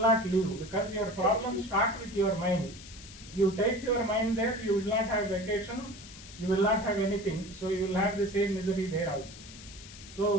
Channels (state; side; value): noise; left; hiss, 17 dB below the sound